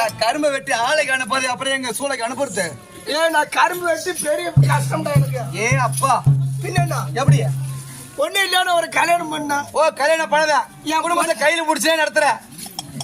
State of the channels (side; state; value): both; identical; correlation 1.00